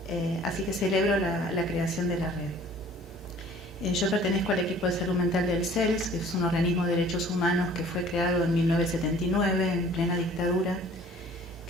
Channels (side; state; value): both; normal; correlation 0.51